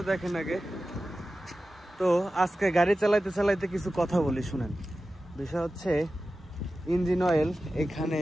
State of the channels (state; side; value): normal; both; correlation 0.94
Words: দেখেন আগে। তো আজকে গাড়ি চালাইতে চালাইতে কিছু কথা বলি, শুনেন। বিষয় হচ্ছে ইঞ্জিন অয়েল এখানে